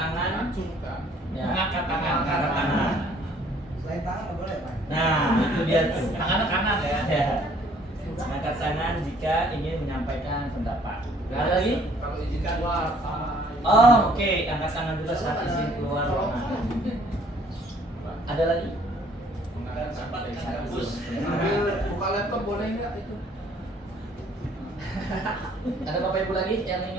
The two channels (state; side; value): normal; both; correlation 0.60